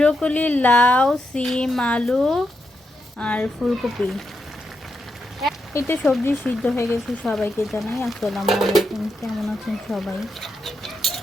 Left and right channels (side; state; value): both; normal; correlation 0.84